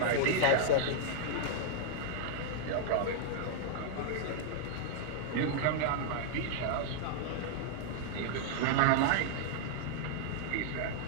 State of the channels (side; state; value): both; different; correlation -0.01